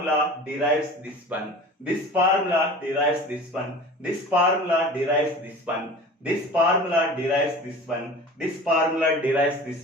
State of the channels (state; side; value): normal; both; correlation 0.39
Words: derives this one, this formula derives this one, this formula derives this one, this formula derives this one, this formula derives